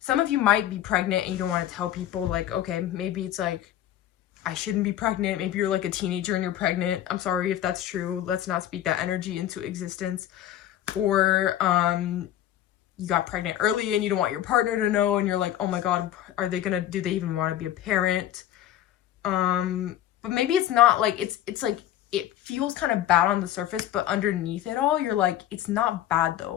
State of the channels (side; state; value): right; quieter; 12.2 dB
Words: of you might be pregnant and you don't want to tell people, like, okay, maybe it's like, I shouldn't be pregnant. Maybe you're like a teenager and you're pregnant. I'm sorry if that's true. Let's not speak that energy into existence. Or you got pregnant early and you don't want your partner to know, and you're like, oh my God, do they even want to be a parent? But maybe it's not like, it's like, it feels kind of bad on the surface, but underneath it all, you're like, it's not bad